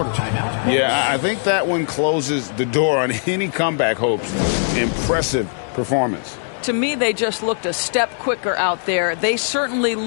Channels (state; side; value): silent; right; 66 dB below the other